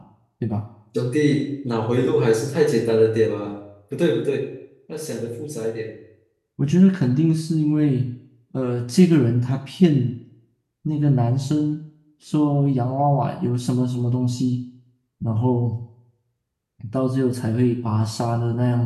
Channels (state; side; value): identical; both; correlation 1.00